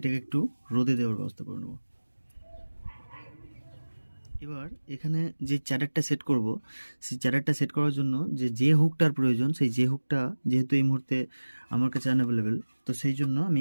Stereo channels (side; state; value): both; inverted; correlation -1.00